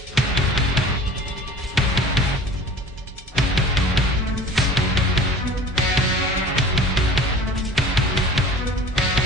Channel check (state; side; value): normal; both; correlation 0.43